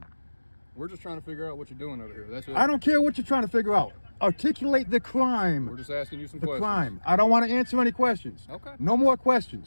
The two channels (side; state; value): both; inverted; correlation -1.00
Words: We're just trying to figure out what you're doing over here. That's it. I don't care what you're trying to figure out. Articulate the crime. We're just asking you some The questions. crime. I don't want to answer any questions. Okay. No more